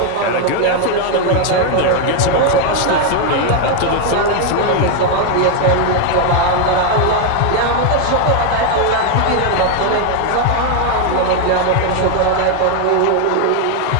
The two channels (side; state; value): both; different; correlation 0.01